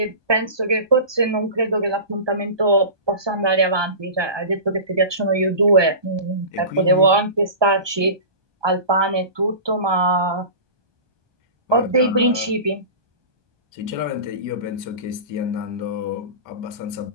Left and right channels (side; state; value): left; late; 1.2 ms